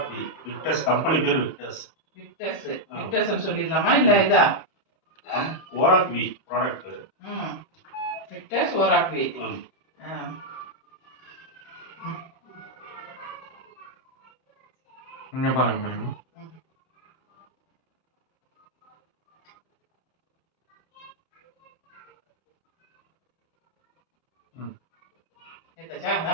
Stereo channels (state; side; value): late; right; 31 ms